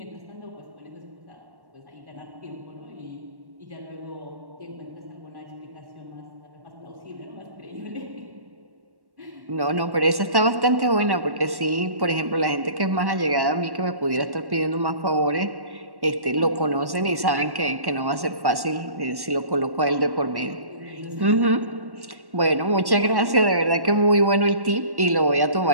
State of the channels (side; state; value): left; late; 1.1 ms